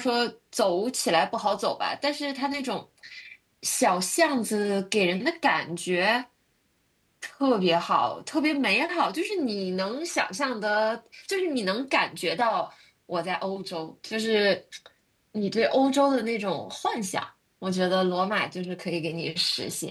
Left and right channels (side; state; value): both; identical; correlation 1.00